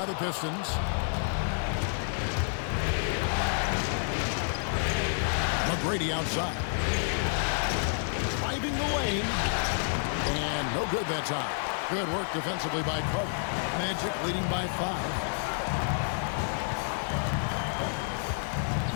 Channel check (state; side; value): silent; right; 55 dB below the other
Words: the Pistons. McGrady outside. Driving the lane. And no good that time. Good work defensively by Carter. Magic leading by 5.